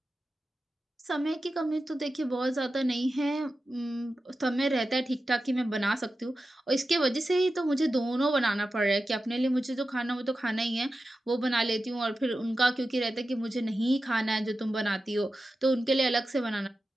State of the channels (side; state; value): both; normal; correlation 0.92